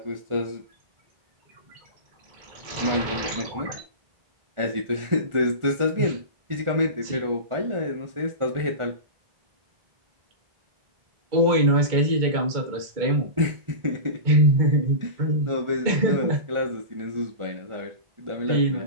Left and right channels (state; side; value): late; left; 1.4 ms